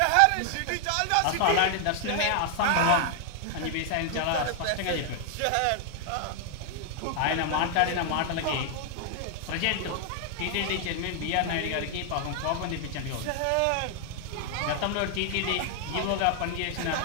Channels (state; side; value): different; both; correlation 0.00